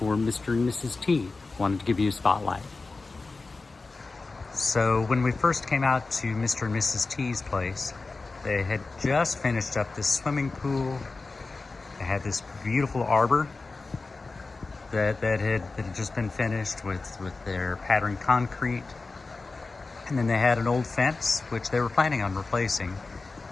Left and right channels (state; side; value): quieter; right; 3.8 dB